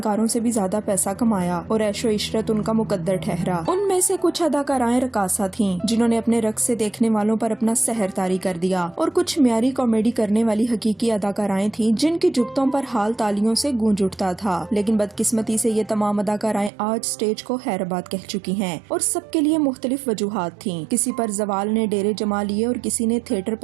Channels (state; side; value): drops out; left; at 16.7 s